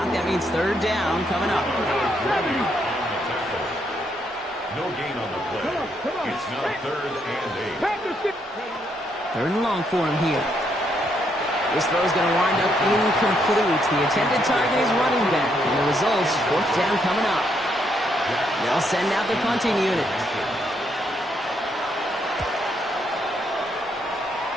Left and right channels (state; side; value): normal; both; correlation 0.75